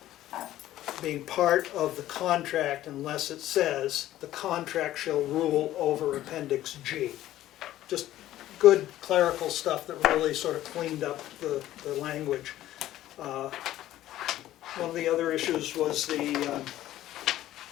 being part of the contract unless it says the contract shall rule over Appendix G. Just good clerical stuff that really sort of cleaned up the language. One of the other issues was the,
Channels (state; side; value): quieter; right; 13.9 dB